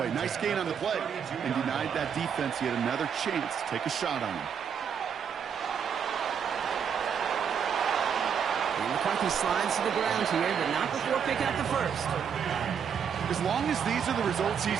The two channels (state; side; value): quieter; left; 7.4 dB